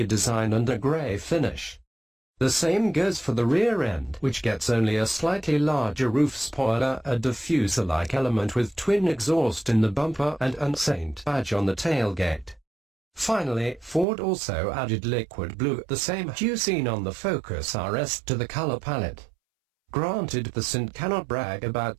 design and a grey finish. The same goes for the rear end, which gets only a slightly larger roof spoiler, a diffuser-like element with twin exhaust in the bumper and an Saint badge on the tailgate. Finally, Ford also added liquid blue, the same hue seen on the Focus RS, to the color palette. Granted, the Cint cannot brag about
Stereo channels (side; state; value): left; drops out; at 14.1 s